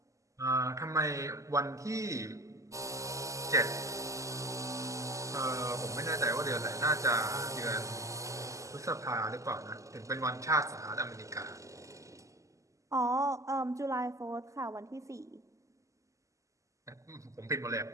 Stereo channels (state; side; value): late; left; 0.16 ms